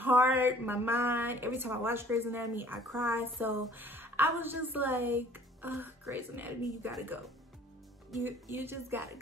my mind. Every time I watch Grey's Anatomy, I cry. So I was just like, Grey's Anatomy, you gotta go. You just gotta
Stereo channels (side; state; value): both; normal; correlation 0.54